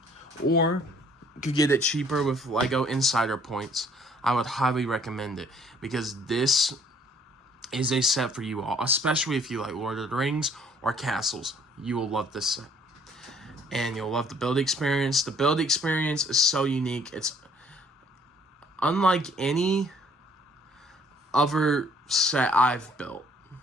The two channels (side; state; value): both; normal; correlation 0.60